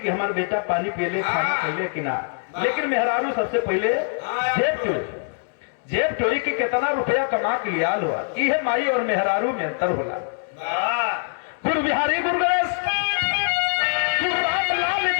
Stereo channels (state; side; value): silent; right; digital silence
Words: हमारा बेटा पानी पी ले, खाना पहले कि ना, लेकिन मेहरारू सबसे पहले जेब चोरी की कितना रुपया कमा के लिया हुआ। ये माई और मेहरारू में अंतर होला। गुरु बिहारी गुरु गणेश